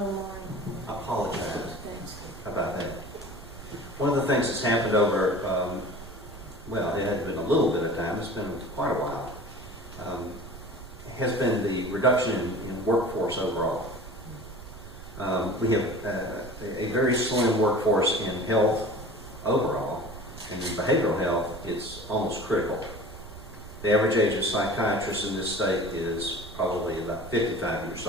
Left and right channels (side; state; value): right; noise; rumble, 15 dB below the sound